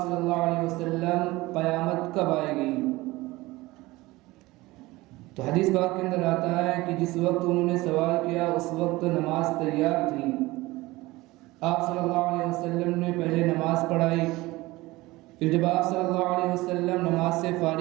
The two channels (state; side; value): quieter; left; 20.1 dB